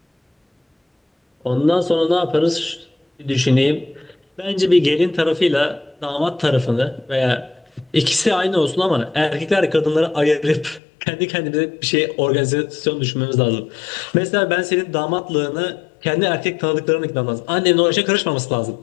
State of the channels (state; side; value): drops out; right; at 10.8 s